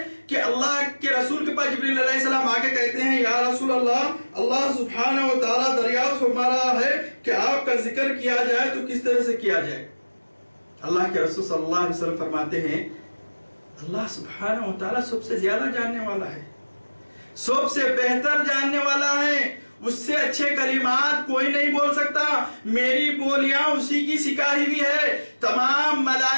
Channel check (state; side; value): inverted; both; correlation -1.00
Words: کہ اللہ کے رسول کے پاس جبریل علیہ السلام آگے کہتے ہیں یا رسول اللہ، اللہ سبحانہ و تعالیٰ دریافت فرما رہا ہے کہ آپ کا ذکر کیا جائے تو کس طرح سے کیا جائے. اللہ کے رسول صلی اللہ علیہ وسلم فرماتے ہیں اللہ سبحانہ و تعالیٰ سب سے زیادہ جاننے والا ہے، سب سے بہتر جاننے والا ہے. اس سے اچھے کلمات کوئی نہیں بول سکتا. میری بولیاں اسی کی سکھائی ہوئی ہے، تمام